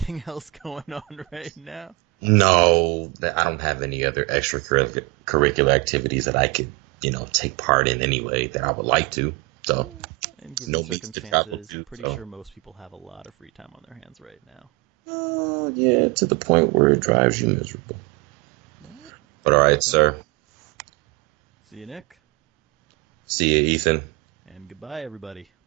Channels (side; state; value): left; quieter; 22.7 dB